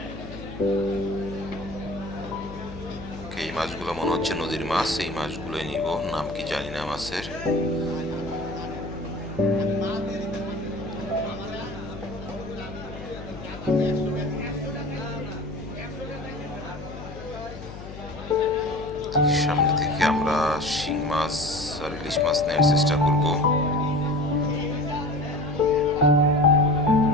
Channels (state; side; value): noise; left; hum, 12 dB below the sound